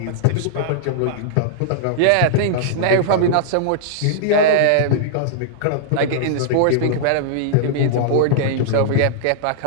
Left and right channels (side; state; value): both; different; correlation -0.02